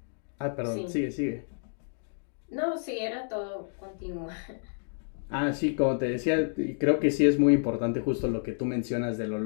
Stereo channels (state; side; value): silent; right; digital silence